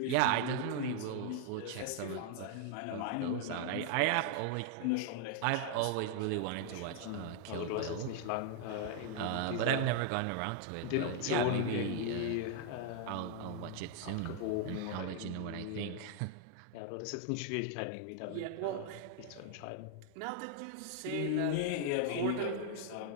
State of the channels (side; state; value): both; different; correlation 0.00